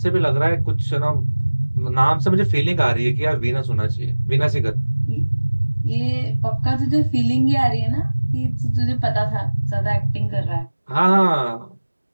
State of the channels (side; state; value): both; inverted; correlation -1.00